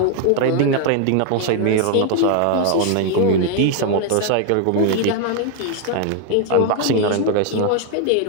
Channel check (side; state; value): both; different; correlation 0.01